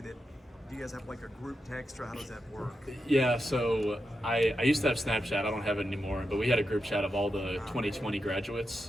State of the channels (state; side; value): normal; both; correlation 0.87